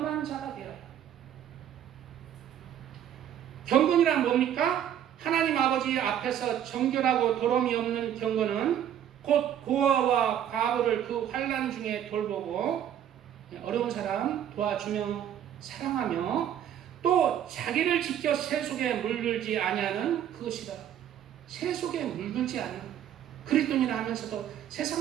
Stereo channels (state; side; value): quieter; left; 10.2 dB